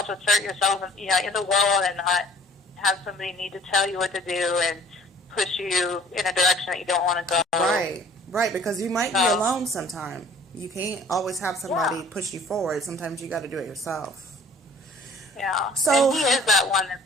yourself, in the world, and not have somebody need to tell you what to do and push you in a direction that you don't want to go. Right, because you might be alone sometime. You can't always have somebody push you forward. Sometimes you got to do it yourself. Yeah. So, and he is that one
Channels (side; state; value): both; normal; correlation 0.51